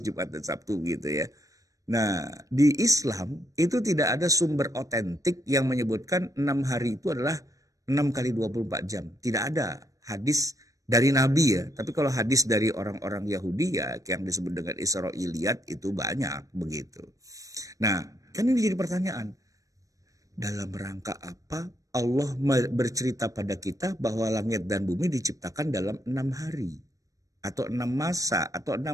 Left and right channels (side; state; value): left; late; 0.16 ms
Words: dan Sabtu gitu ya. Nah, di Islam itu tidak ada sumber otentik yang menyebutkan 6 hari itu adalah 6 kali 24 jam. Tidak ada hadis dari Nabi ya. Tapi kalau hadis dari orang-orang Yahudi ya yang disebut dengan Israiliyat itu banyak begitu. Nah, kan ini jadi pertanyaan. Dalam rangka apa Allah bercerita pada kita bahwa langit dan bumi diciptakan dalam 6 hari atau 6 masa atau